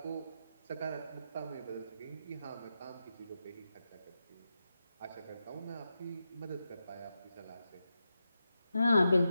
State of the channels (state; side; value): inverted; both; correlation -0.89